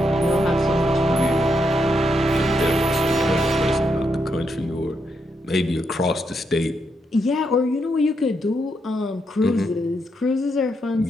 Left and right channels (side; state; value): both; normal; correlation 0.80